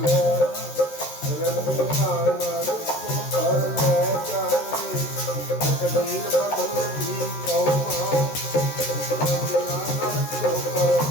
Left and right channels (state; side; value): late; right; 13 ms